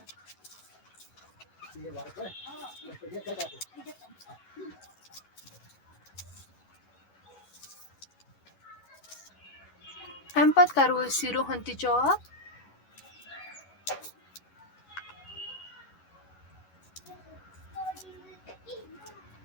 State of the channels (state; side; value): late; right; 11 ms